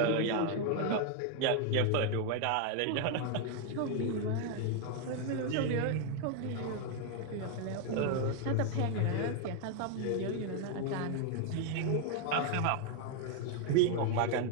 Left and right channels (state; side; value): different; both; correlation 0.00